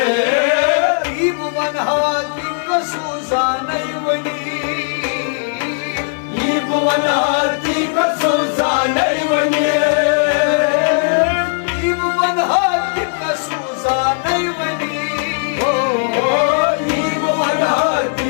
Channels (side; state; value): right; silent; 64 dB below the other